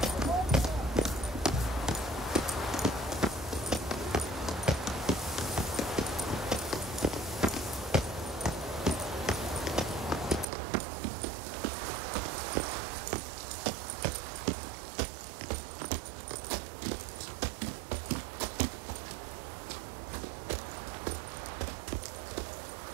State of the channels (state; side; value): drops out; left; at 10.5 s